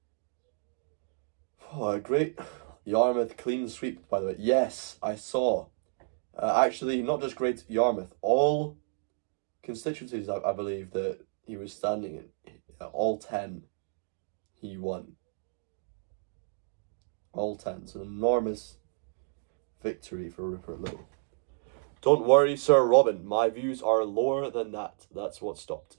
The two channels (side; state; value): left; silent; digital silence